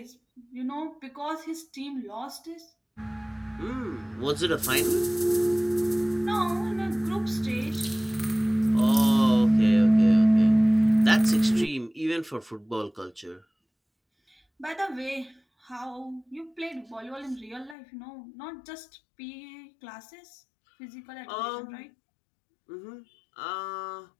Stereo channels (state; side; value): drops out; right; at 17.8 s